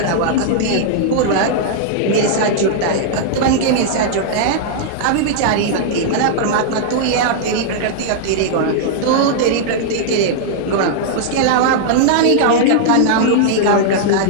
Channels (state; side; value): different; both; correlation -0.01